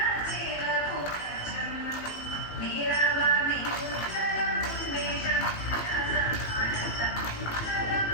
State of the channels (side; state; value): right; late; 18 ms